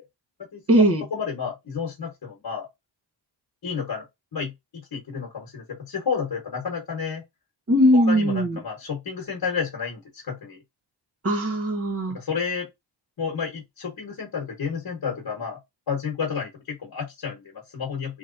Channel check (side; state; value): both; normal; correlation 0.34